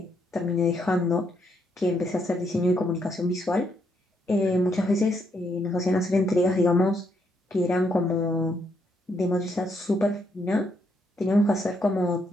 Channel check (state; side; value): normal; both; correlation 0.75